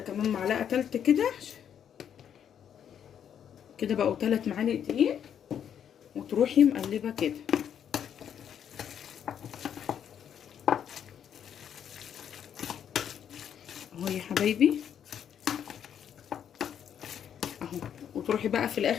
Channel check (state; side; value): quieter; right; 8.9 dB